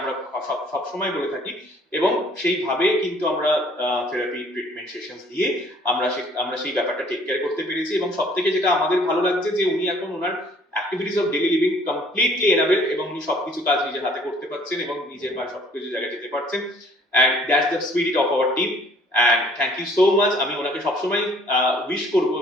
সব সময় বলে থাকি এবং সেইভাবে কিন্তু আমরা থেরাপি ট্রিটমেন্ট সেশনস দিয়ে আমরা সেই ব্যাপারটা টেক কেয়ার করতে পেরেছি এবং সবথেকে যেটা আমাদের ভালো লাগছে যে উনি এখন ওনার activities of daily living completely enable এবং উনি সবকিছু কাজ নিজের হাতে করতে পারছেন এবং নিজের বা সবকিছু জায়গায় যেতে পারছেন। And that's the spirit of our team. And thank you so much. আমি ওনাকে সবসময় উইশ করবো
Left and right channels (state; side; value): normal; both; correlation 0.57